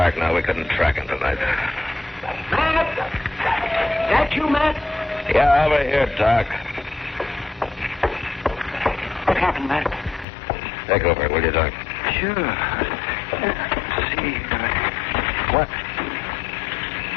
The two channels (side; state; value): right; drops out; at 10.2 s